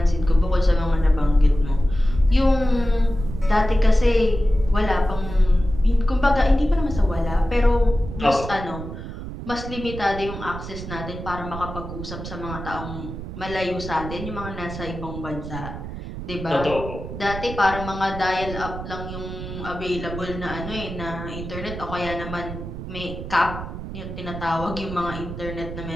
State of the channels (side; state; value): right; noise; rumble, 9 dB below the sound